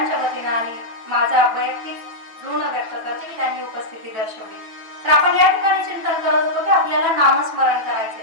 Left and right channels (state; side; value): late; left; 9.1 ms